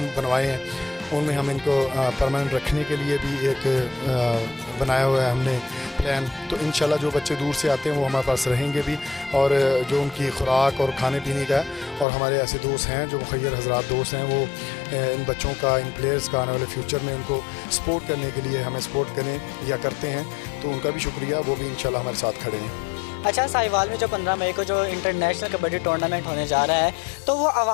बनवाए हैं उनमें हम इनको परमानेंट रखने के लिए भी एक बनाया हुआ है हमने प्लान। तो इंशाल्लाह जो बच्चे दूर से आते हैं वो हमारे पास रहेंगे भी, और जो उनकी खुराक और खाने पीने का है। और हमारे ऐसे दोस्त हैं जो मुखय्यर हजरात दोस्त हैं, वो इन बच्चों का, इन प्लेयर्स का आने वाले फ्यूचर में उनको सपोर्ट करने के लिए हमें सपोर्ट करें या करते हैं, तो उनका भी शुक्रिया, वो भी इंशाल्लाह हमारे साथ खड़े हैं। अच्छा, साहिवाल में जो 15 मई को जो इंटरनेशनल कबड्डी टूर्नामेंट होने जा रहा है, तो वो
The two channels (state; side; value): drops out; right; at 12.1 s